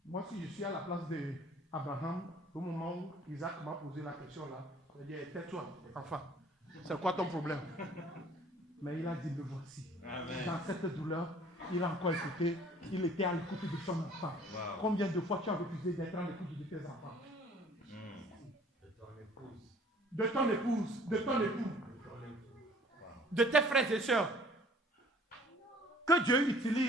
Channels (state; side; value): normal; both; correlation 0.54